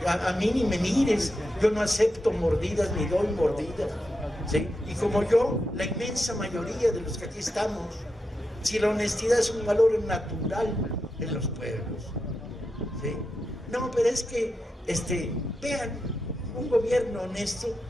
a mí ni me mires, yo no acepto mordidas ni doy mordidas, ¿sí? Y como yo, la inmensa mayoría de los que aquí estamos, si la honestidad es un valor natural en los pueblos, ¿sí? No, pero es que, vean, un gobierno honesto.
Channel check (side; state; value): both; normal; correlation 0.87